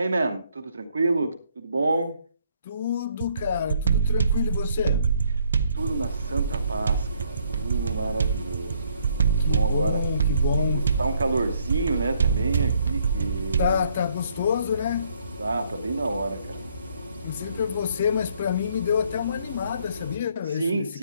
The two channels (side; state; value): both; inverted; correlation -0.68